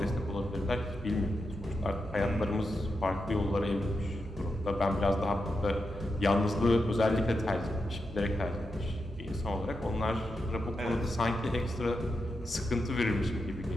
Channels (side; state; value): both; normal; correlation 0.87